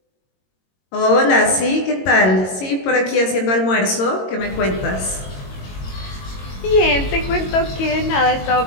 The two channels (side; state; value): right; late; 22 ms